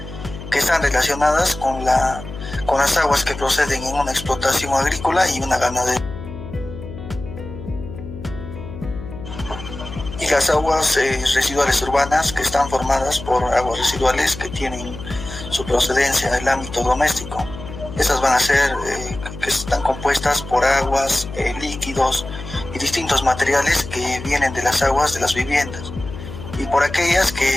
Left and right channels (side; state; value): left; noise; hum, 12 dB below the sound